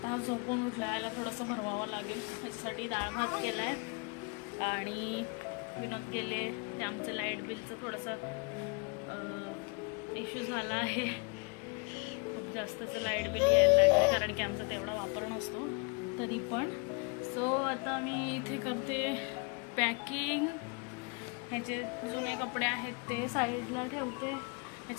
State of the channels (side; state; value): right; quieter; 33.5 dB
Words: हा झोपून उठला, याला थोडंसं भरवावं लागेल. त्याच्यासाठी डाळ भात केलाय. आणि विनोद गेले. ते आमचं लाईट बिलचं थोडंसं इश्यू झाला आहे. खूप जास्तच लाईट बिल यायला लागलं, कारण की आमचा तेवढा वापर नसतो तरी पण. सो आता मी इथे करते पॅकिंग. ह्याचे जुने कपडे आहेत ते साईडला ठेवते.